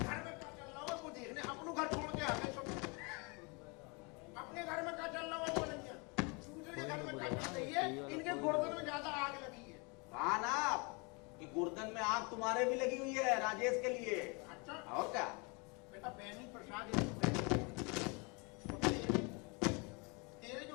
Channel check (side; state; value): right; quieter; 30.8 dB